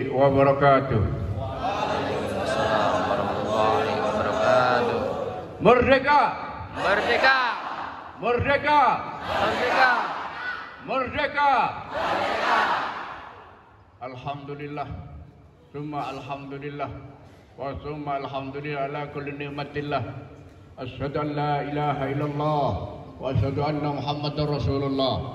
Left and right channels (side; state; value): both; identical; correlation 1.00